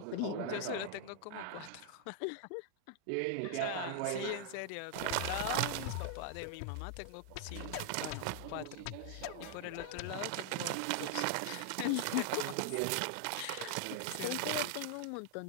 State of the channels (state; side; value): different; both; correlation 0.00